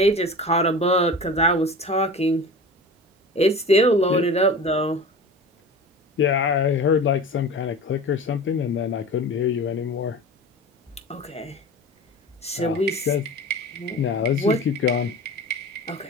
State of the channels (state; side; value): normal; both; correlation 0.34